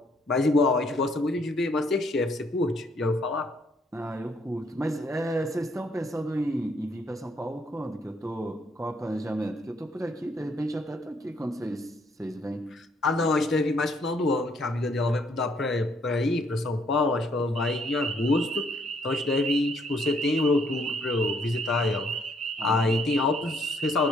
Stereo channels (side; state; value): both; normal; correlation 0.68